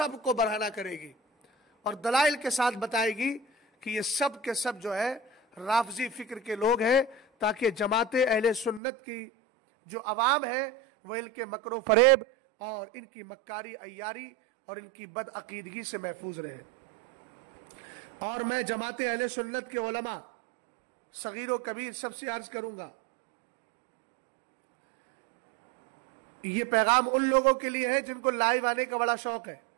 کو برہنہ کرے گی اور دلائل کے ساتھ بتائے گی کہ یہ سب کے سب جو ہے رافضی فکر کے لوگ ہیں، تاکہ جماعت اہل سنت کی جو عوام ہے وہ ان کے مکر و فریب اور ان کی مکاری عیاری اور ان کی بد عقیدگی سے محفوظ رہے۔ اور میں جماعت اہل سنت کے علماء صغیر و کبیر سب سے عرض کروں گا، یہ پیغام ان لوگوں کے لیے ہے جن کو لائیو آنے کا بڑا شوق ہے۔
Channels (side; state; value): left; drops out; at 8.8 s